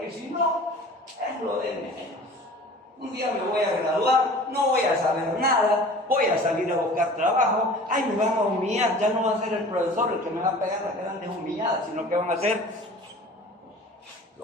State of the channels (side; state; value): both; normal; correlation 0.43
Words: y si no, es lo de menos. Un día me voy a graduar, no voy a saber nada, voy a salir a buscar trabajo, ay, me van a humillar, ya no va a ser el profesor el que me va a pegar las grandes humilladas, sino que van a ser